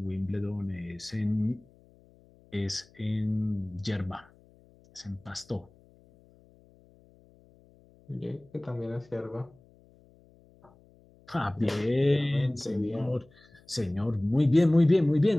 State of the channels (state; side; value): noise; left; hum, 28 dB below the sound